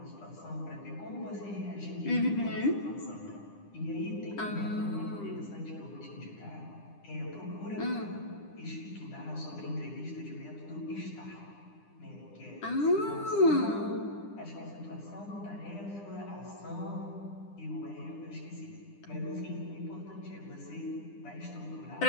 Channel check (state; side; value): late; right; 9.9 ms